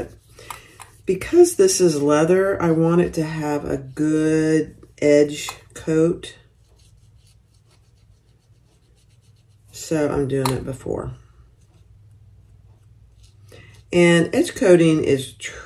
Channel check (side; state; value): both; identical; correlation 1.00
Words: because this is leather, I want it to have a good edge coat. So I'm doing it before. And edge coating is